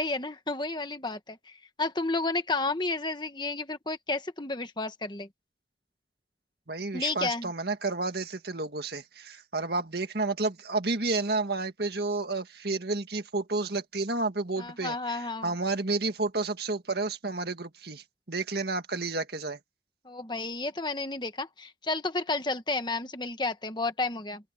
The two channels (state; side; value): normal; both; correlation 0.11